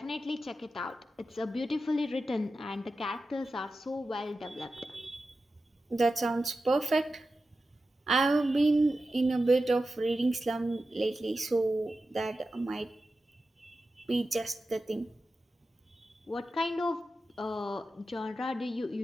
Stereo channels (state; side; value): normal; both; correlation 0.92